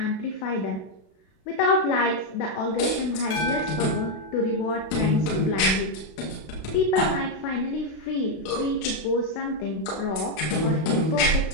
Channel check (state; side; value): late; right; 32 ms